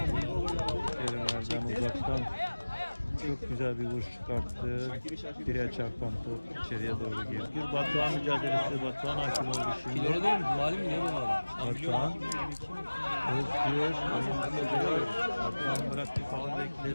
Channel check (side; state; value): both; inverted; correlation -1.00